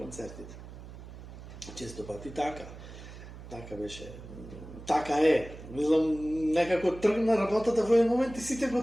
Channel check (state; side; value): noise; right; hum, 14 dB below the sound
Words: Често пати така. Така беше. Така е. Мислам, некако тргна работата во еден момент и сите